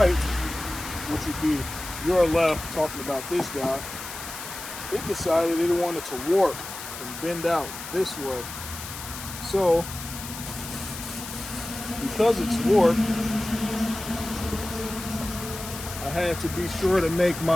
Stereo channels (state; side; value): noise; left; hiss, 10 dB below the sound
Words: which would be your left, talking about this guy, it decided it wanted to warp and bend out this way. So, because it's warped, had to be sure to make